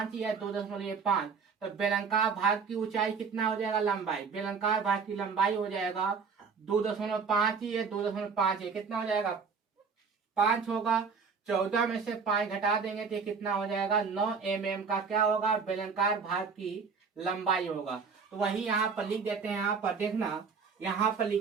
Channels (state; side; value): quieter; left; 5.5 dB